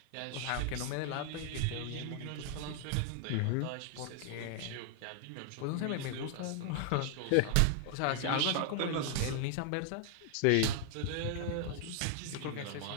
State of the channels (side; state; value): both; different; correlation 0.00